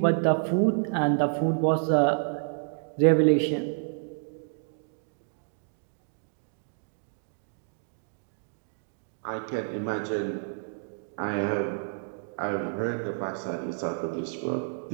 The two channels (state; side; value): silent; left; digital silence